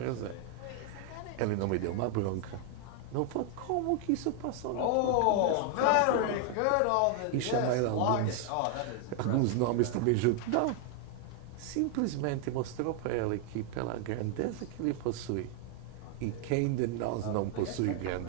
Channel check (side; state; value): both; different; correlation 0.00